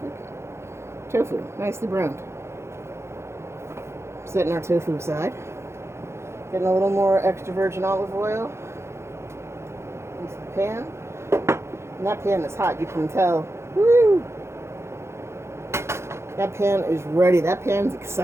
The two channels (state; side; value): late; left; 0.13 ms